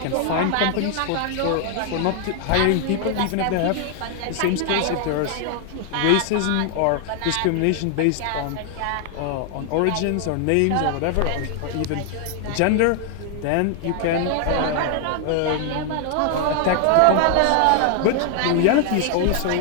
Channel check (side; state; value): both; different; correlation 0.00